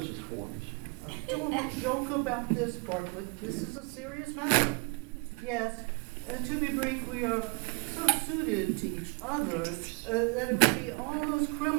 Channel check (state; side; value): quieter; left; 31.2 dB